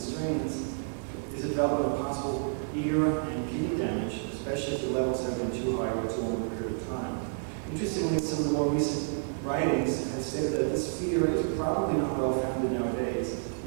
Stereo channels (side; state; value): left; silent; 58 dB below the other